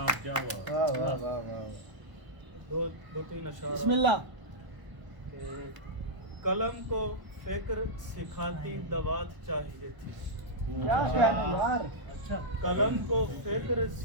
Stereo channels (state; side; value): late; left; 1.0 ms